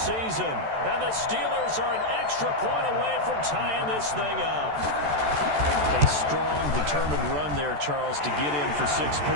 And the Steelers are an extra point away from tying this thing up. A strong, determined run there, Charles, to get in for 6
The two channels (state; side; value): late; left; 14 ms